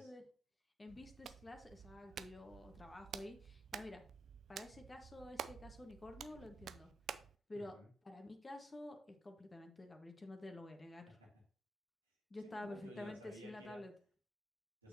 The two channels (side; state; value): both; normal; correlation 0.84